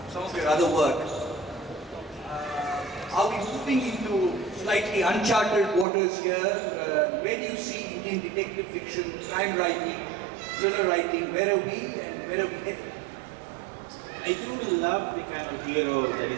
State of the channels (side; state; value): left; drops out; at 5.9 s